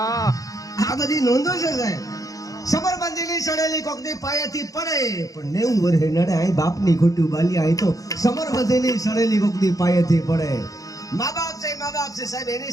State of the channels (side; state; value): right; late; 0.17 ms